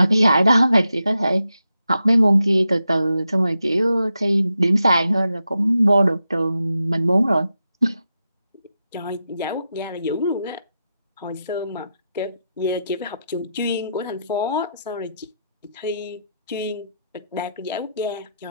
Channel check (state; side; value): inverted; both; correlation -0.86